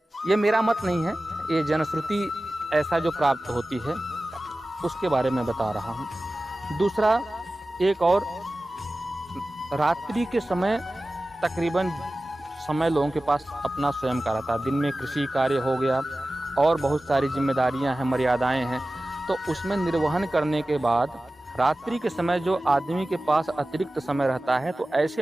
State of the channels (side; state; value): both; normal; correlation 0.96